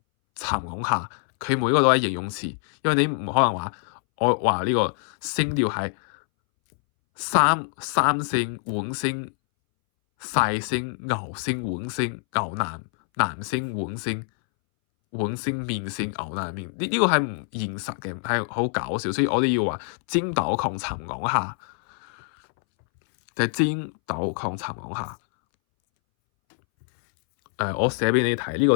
殘昂下，佢每一個都係形容詞，因為你唔可能話我話呢個聲調係三聲碗聲細聲牛聲碗聲牛腩聲碗聲碗聲麵聲牛腩麵，呢個係唔現實嘅，係好搞笑，所以我哋要話尖抖窮殘昂下，就係尖抖窮殘昂下。我寫俾你睇呢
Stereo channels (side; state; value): right; silent; 62 dB below the other